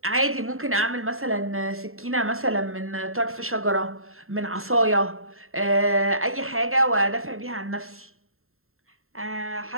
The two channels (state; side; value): late; left; 0.62 ms